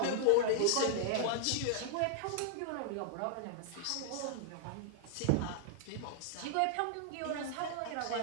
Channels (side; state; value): both; different; correlation -0.01